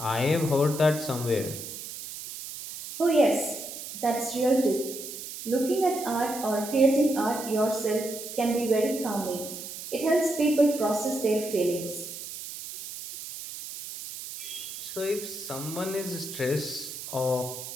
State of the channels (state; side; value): noise; right; hiss, 10 dB below the sound